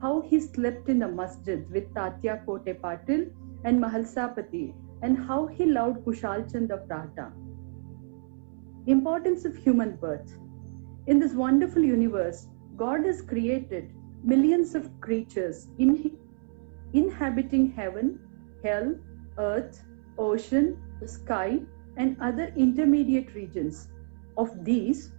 how he slept in the masjid with Tatya Kote Patil and Mahalsapati, and how he loved Kushal Chand of Rahta. Importance of human birth. In this wonderful universe, God has created millions of creatures inhabiting heaven, hell, earth, ocean, sky, and other intermediate regions. Of these,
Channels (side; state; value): left; silent; 59 dB below the other